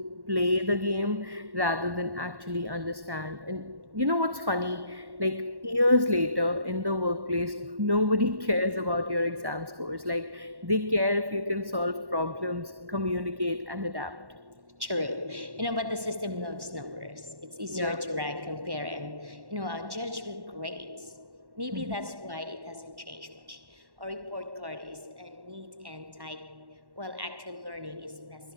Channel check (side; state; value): left; late; 1.1 ms